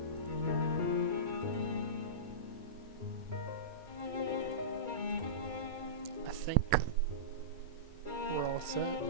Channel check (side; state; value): left; late; 2.3 ms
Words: I think we're all set.